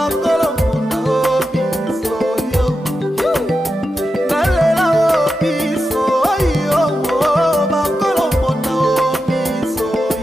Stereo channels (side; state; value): both; normal; correlation 0.89